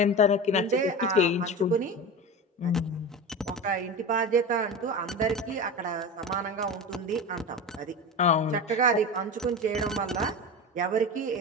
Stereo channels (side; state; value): both; normal; correlation 0.27